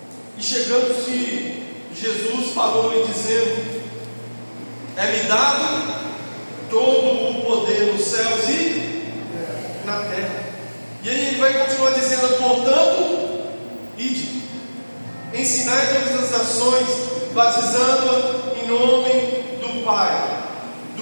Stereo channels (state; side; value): inverted; both; correlation -1.00